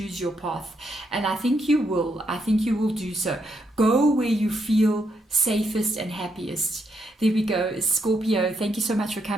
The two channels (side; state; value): both; normal; correlation 0.78